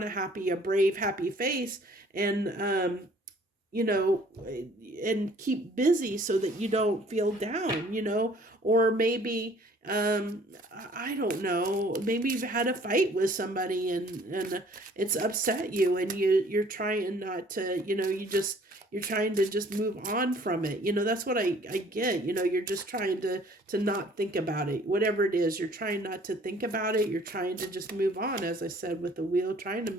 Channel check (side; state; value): both; normal; correlation 0.56